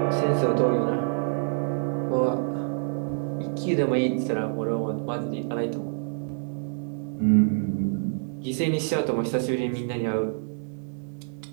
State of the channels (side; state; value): left; silent; digital silence